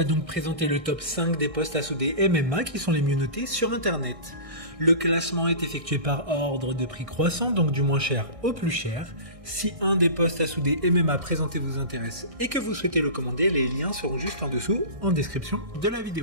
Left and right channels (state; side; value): late; left; 1.6 ms